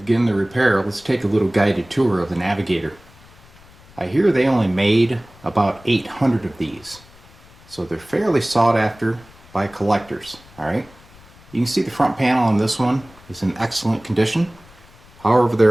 the repair, let's take a little guided tour of the Navigator. I hear they only made about 800 of these, so they're fairly sought after by collectors. Alright, you can see the front panel on this one is in excellent condition. However,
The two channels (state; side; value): noise; left; rumble, 24 dB below the sound